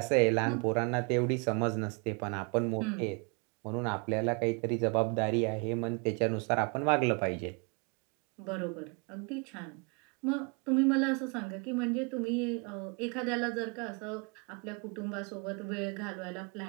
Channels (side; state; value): left; quieter; 33.5 dB